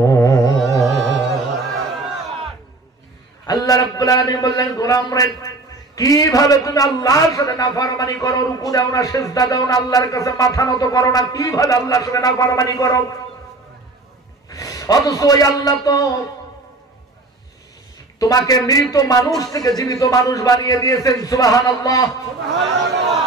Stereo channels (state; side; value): quieter; left; 3.2 dB